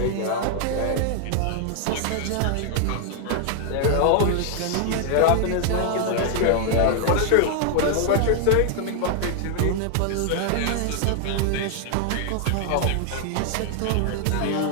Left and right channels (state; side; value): different; both; correlation 0.00